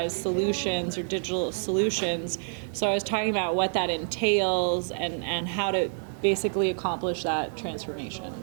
solutions or digital solutions. So I was talking about what that entails and how to basically accomplish that transformation.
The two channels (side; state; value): left; silent; digital silence